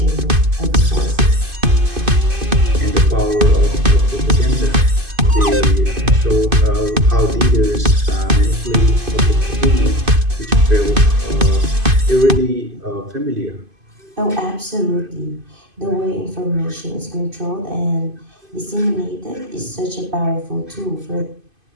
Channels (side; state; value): left; late; 2.5 ms